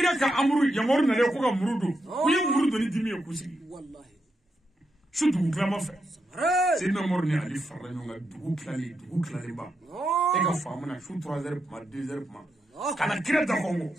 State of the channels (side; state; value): both; normal; correlation 0.84